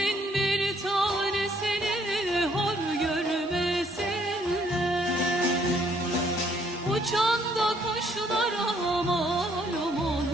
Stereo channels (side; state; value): both; normal; correlation 0.67